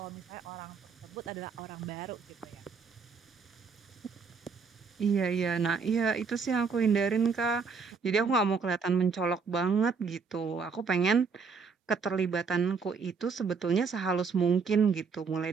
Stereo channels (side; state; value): left; quieter; 5.3 dB